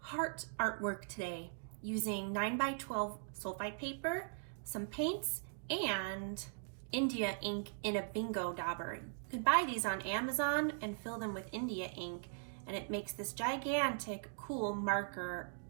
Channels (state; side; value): silent; left; digital silence